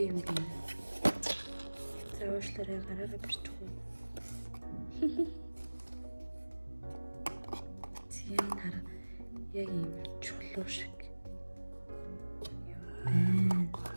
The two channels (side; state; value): both; inverted; correlation -1.00